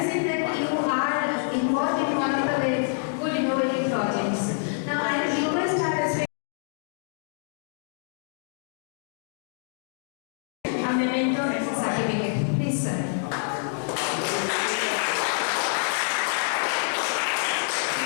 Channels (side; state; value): right; silent; digital silence